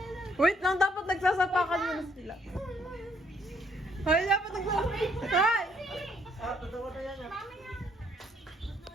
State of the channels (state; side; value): normal; both; correlation 0.68